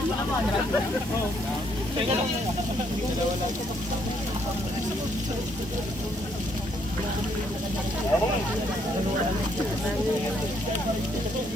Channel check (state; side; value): normal; both; correlation 0.70